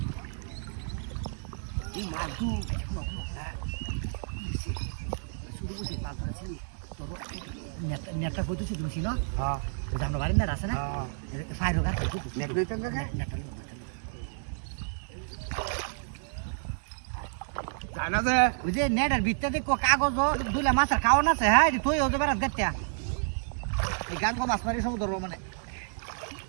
এই মাদু শুরু করতে পারছ তোর নেটটা কইতেছি তুমি না হ্যাঁ জানো বাড়ি না আছে না ফাইরো গাছ নেট লইতেন না নেটটা জানা যে ওই যে নেটের ভিতরে কাগজ দুলে মাছের খাওয়ান আছে হ্যাঁ তুই ওদের বেড়াত গাচ্ছা এই গান কো মাছ মারি সব ধরবো মানে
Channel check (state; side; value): silent; left; digital silence